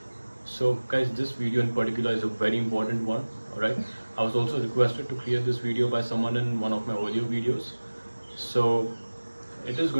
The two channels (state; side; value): inverted; both; correlation -1.00